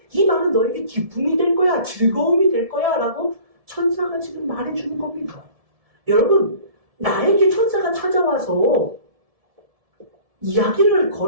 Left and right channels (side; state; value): left; late; 1.7 ms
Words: 이 말은 너에게 기쁨이 될 거야. 즐거움이 될 거야. 라고 천사가 지금 말해주는 겁니다. 여러분, 나에게 천사가 찾아와서 이야기를